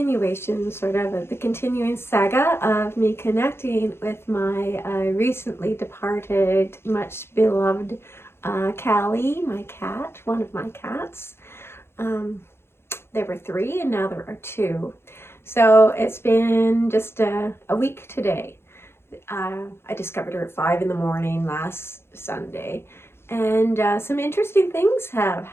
sort of the continuing saga of me connecting with my recently departed, much beloved Callie, my cat, one of my cats. There were 3 and now there are 2. So it's been just a week today. I discovered her at 5 in the morning last Sunday, and some interesting things have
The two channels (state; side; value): late; right; 0.12 ms